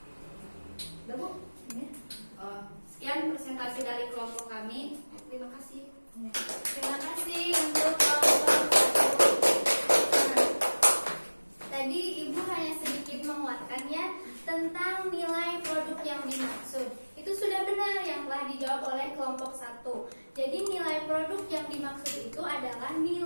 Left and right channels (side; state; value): both; inverted; correlation -1.00